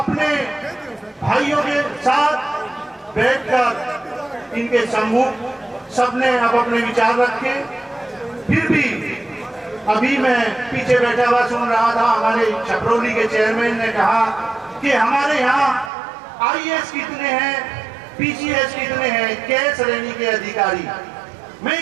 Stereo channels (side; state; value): left; drops out; at 15.9 s